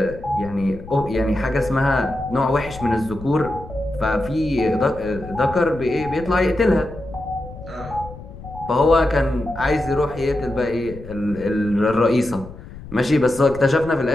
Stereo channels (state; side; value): noise; left; rumble, 15 dB below the sound